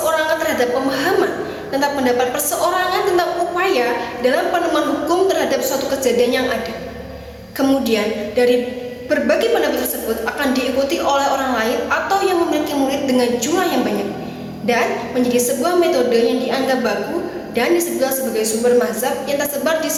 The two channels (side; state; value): both; identical; correlation 1.00